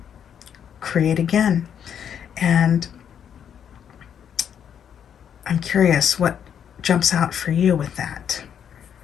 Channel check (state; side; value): quieter; right; 8.5 dB